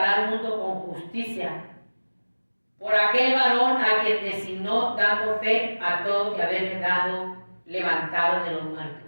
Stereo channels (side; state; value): both; inverted; correlation -1.00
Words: al mundo con justicia, por aquel varón a quien designó, dando fe a todos y haberle dado levantado de los